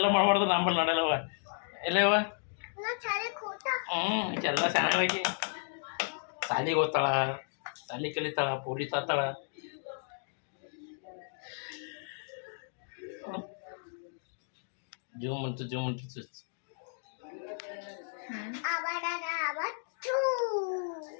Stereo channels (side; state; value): right; silent; digital silence